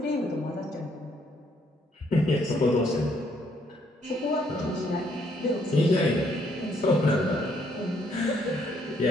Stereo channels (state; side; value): normal; both; correlation 0.69